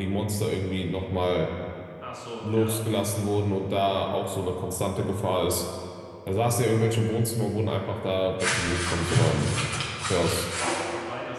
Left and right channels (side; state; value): both; identical; correlation 1.00